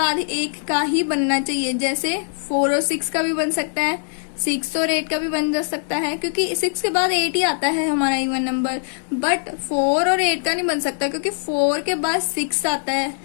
एक का ही बनना चाहिए। जैसे 4 और 6 का भी बन सकता है, 6 और 8 का भी बन जा सकता है, क्योंकि 6 के बाद 8 ही आता है हमारा इवन नंबर। बट 4 और 8 का नहीं बन सकता, क्योंकि 4 के बाद 6 आता है,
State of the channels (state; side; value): silent; right; digital silence